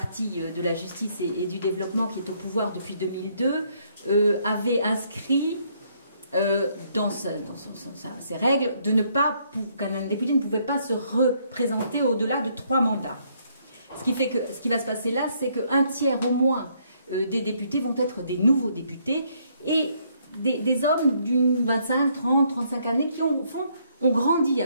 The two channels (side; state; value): both; inverted; correlation -0.70